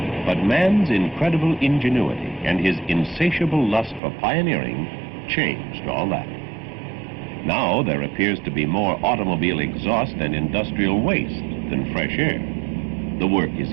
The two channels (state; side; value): drops out; left; at 4.0 s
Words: But man's incredible ingenuity and his insatiable lust for pioneering changed all that. Now there appears to be more automobile exhaust and industrial waste than fresh air. The work is